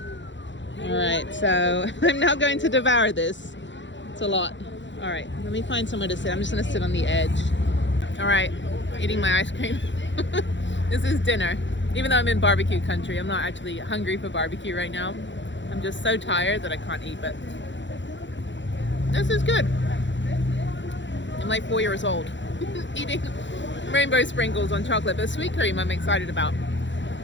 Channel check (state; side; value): late; right; 0.54 ms